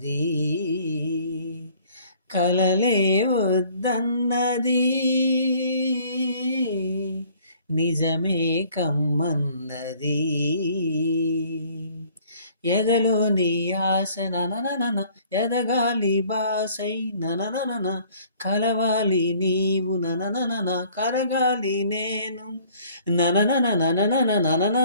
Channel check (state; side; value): inverted; both; correlation -0.56